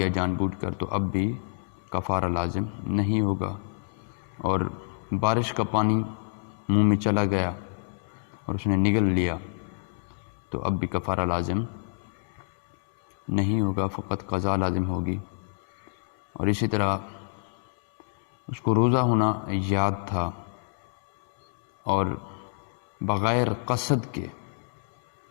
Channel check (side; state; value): right; silent; digital silence